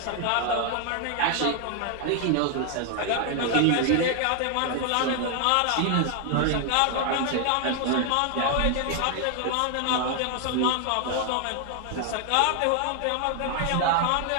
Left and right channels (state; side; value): different; both; correlation 0.00